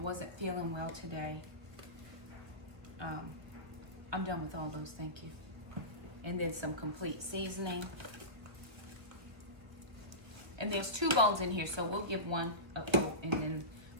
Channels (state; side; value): late; left; 1.4 ms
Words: feeling well today. I'm done with all those, thank you. And then some complete seasoning. And there's 2 bones in here, so we'll give one a coat and then